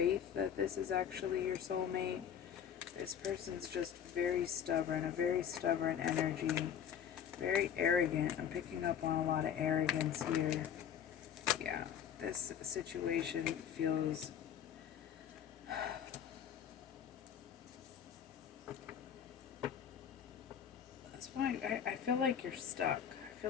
that this is actually your soulmate. This person's just very stubborn, a very stubborn energy, very arrogant. I'm picking up on a lot of arrogance here. Yeah, this situation feels that's why I feel like you're stuck. I feel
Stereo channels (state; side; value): quieter; right; 8.8 dB